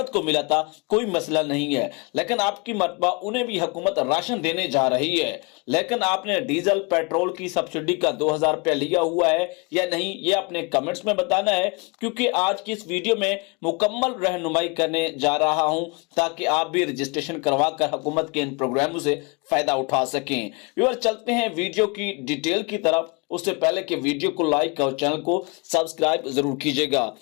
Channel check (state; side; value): quieter; right; 29.8 dB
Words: को मिला था, कोई मसला नहीं है, लेकिन आपकी मर्तबा उन्हें भी हुकूमत राशन देने जा रही है। लेकिन आपने डीजल पेट्रोल की सब्सिडी का 2,000 रुपया लिया हुआ है या नहीं, ये अपने कमेंट्स में बताना है, क्योंकि आज की इस वीडियो में मुकम्मल रहनुमाई करने जा रहा हूं ताकि आप भी रजिस्ट्रेशन करवाकर हुकूमत के इन प्रोग्रामों से फायदा उठा सकें। व्यूअर, चलते हैं वीडियो की डिटेल की तरफ। उससे पहले कि वीडियो को लाइक और चैनल को सब्सक्राइब जरूर कीजिएगा।